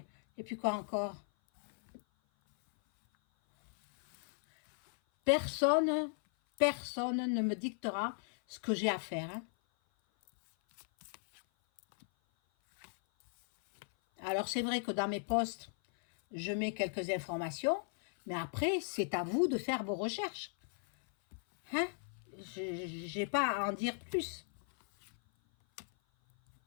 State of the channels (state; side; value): silent; right; 54 dB below the other